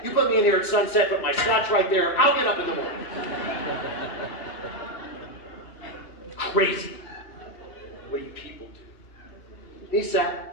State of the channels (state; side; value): late; right; 3.0 ms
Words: you put me in here at sunset, put my scotch right there, I'll get up in the morning. Crazy. What do you people do? He